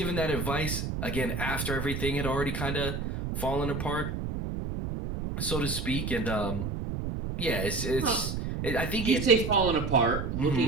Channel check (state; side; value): noise; right; rumble, 4 dB below the sound